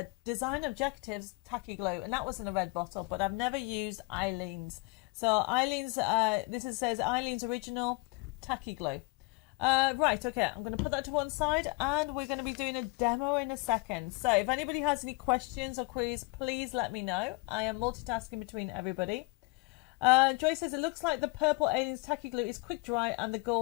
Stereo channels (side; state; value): right; quieter; 28.7 dB